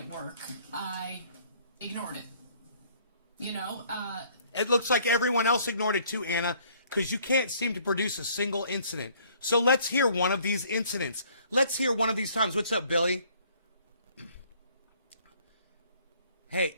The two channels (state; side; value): inverted; both; correlation -0.60